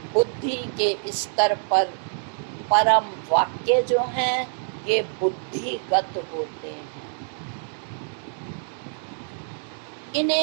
बुद्धि के स्तर पर परम वाक्य जो हैं ये बुद्धिगत होते हैं।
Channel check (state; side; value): silent; left; 61 dB below the other